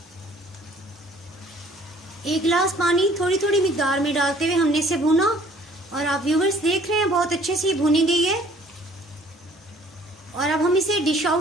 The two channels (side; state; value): both; normal; correlation 0.56